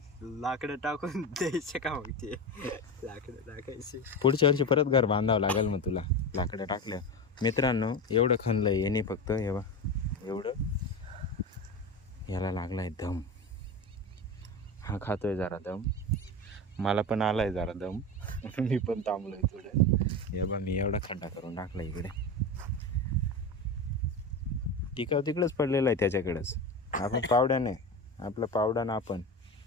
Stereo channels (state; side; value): normal; both; correlation 0.23